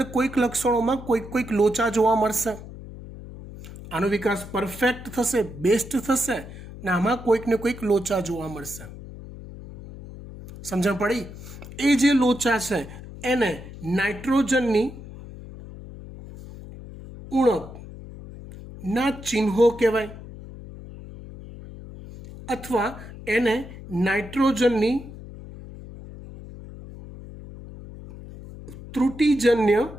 કોઈક લક્ષણોમાં કોઈક લોચા જોવા મળશે. આનો વિકાસ પરફેક્ટ થશે, બેસ્ટ થશે, ને આમાં કોઈક ને કોઈક લોચા જોવા મળશે. સમજણ પડી? એ જે લોચા છે એને નાઇટ્રોજનની ઉણપના ચિહ્નો કહેવાય, અથવા એને નાઇટ્રોજનની ત્રુટિજન્ય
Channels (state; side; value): noise; left; hum, 14 dB below the sound